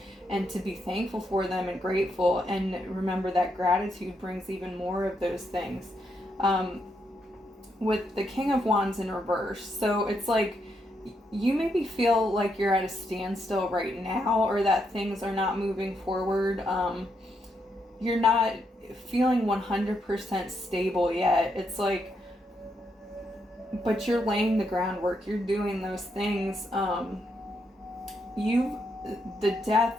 and to be thankful for them and grateful. And remember that gratitude brings even more of those things. With the King of Wands in reverse. So it's like you maybe feel like you're at a standstill right now, or that things are not moving forward. You're not feeling 100% stable yet. It's like, but you're laying the groundwork. You're doing those things. The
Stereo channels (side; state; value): both; normal; correlation 0.79